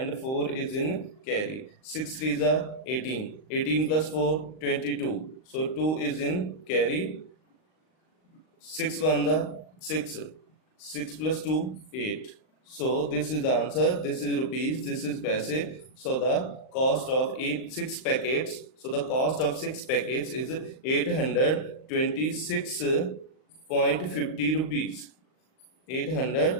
4 is in carry. 6 3s are 18, 18 plus 4 22. So 2 is in carry. 6 1s are 6, 6 plus 2 8. So this is the answer. This is rupees, this is paise. So the cost of 6 packets. So the cost of 6 packets is 826.50 rupees.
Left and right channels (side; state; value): right; late; 38 ms